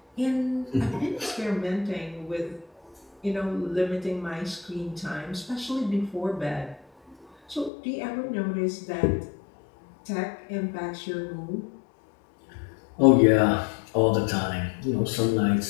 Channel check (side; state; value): right; drops out; at 7.7 s